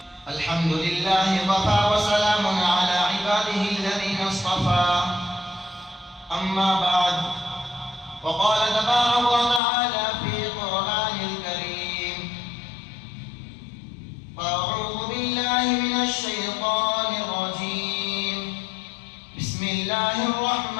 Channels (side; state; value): right; drops out; at 9.6 s